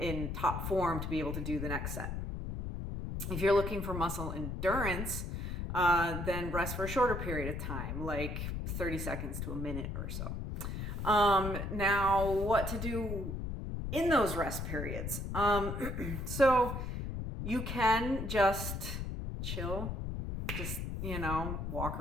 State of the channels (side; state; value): left; noise; rumble, 4 dB below the sound